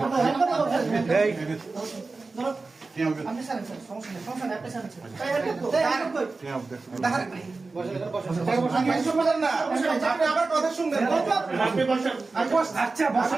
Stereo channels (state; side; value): quieter; left; 3.8 dB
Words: এই ধরো। আপনি স্যার সমস্যা নেই আপনি স্যার। এই হেল্প কই? দাঁড়ান আমি এসব বলেন না আপনি আমার কথা শুনবেন আপনি বসেন আচ্ছা